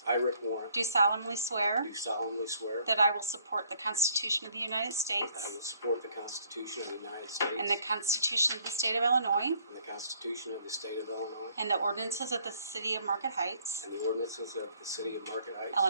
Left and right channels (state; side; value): inverted; both; correlation -0.64